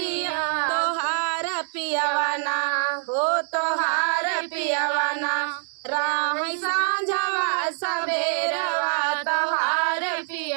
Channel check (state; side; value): silent; left; 62 dB below the other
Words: तोहार पियवाना हो, तोहार पियवाना, राह साँझवा सबेरवा तोहार